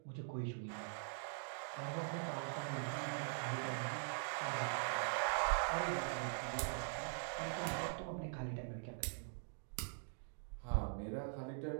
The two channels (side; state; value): left; silent; digital silence